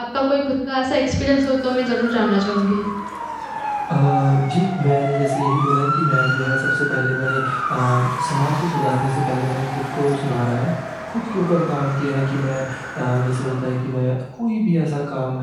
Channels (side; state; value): both; identical; correlation 1.00